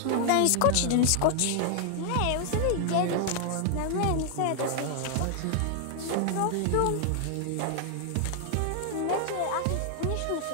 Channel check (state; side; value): different; both; correlation 0.00